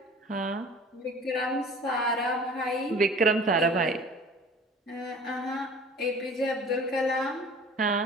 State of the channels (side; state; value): both; normal; correlation 0.45